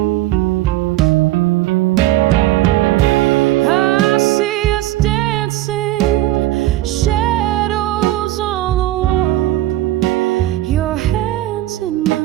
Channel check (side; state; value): left; quieter; 15.6 dB